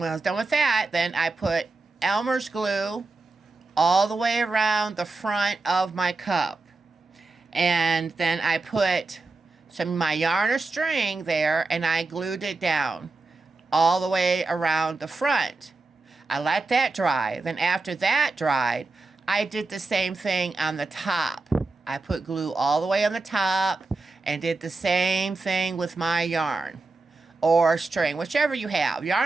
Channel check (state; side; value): quieter; left; 3.5 dB